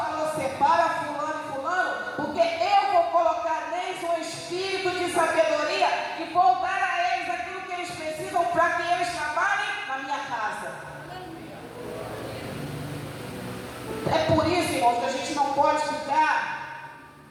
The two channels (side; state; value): both; identical; correlation 1.00